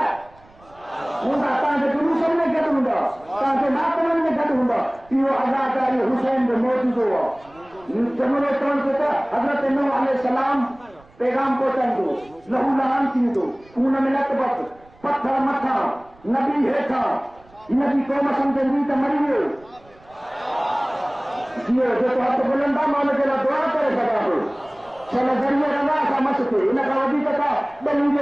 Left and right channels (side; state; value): right; noise; rumble, 28 dB below the sound